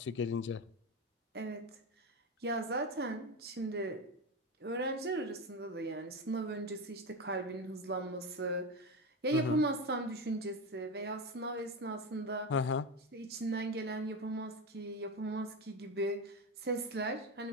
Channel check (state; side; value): normal; both; correlation 0.18